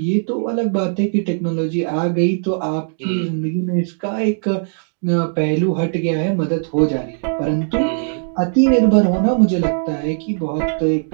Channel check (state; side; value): silent; left; digital silence